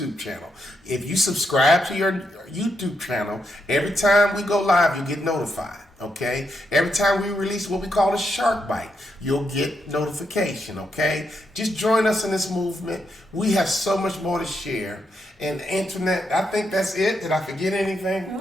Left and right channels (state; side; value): normal; both; correlation 0.81